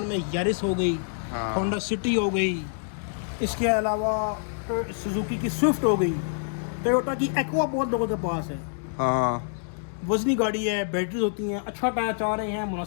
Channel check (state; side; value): silent; right; digital silence